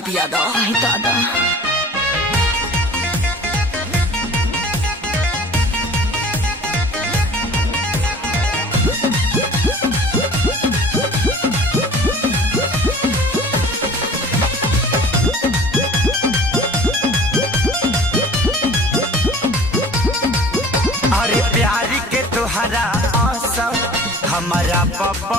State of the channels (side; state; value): both; normal; correlation 0.45